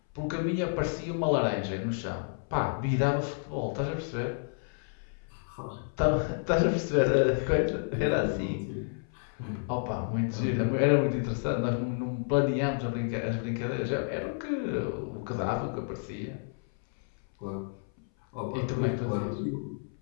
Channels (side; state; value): right; silent; 58 dB below the other